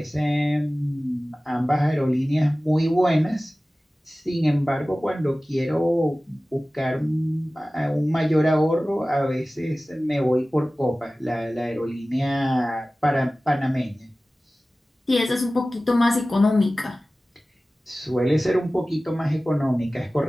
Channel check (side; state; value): both; normal; correlation 0.97